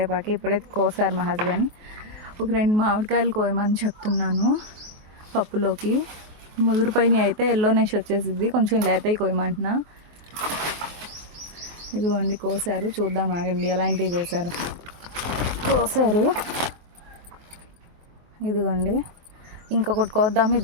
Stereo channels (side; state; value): left; late; 23 ms